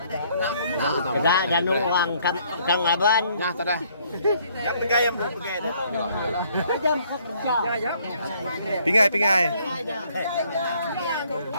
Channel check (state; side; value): inverted; both; correlation -0.64